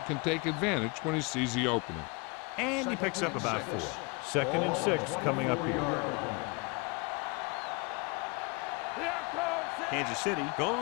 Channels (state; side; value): quieter; right; 29.0 dB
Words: can take advantage when he sees the opening. And he picks up about 4. Second and 6 coming up here. Kansas City